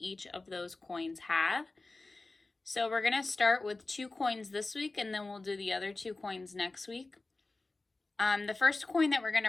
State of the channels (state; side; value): quieter; right; 3.3 dB